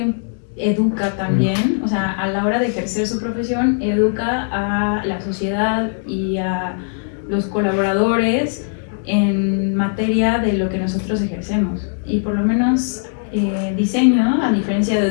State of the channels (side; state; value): right; silent; digital silence